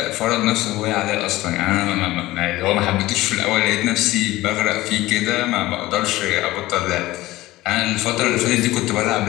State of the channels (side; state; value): right; quieter; 17.7 dB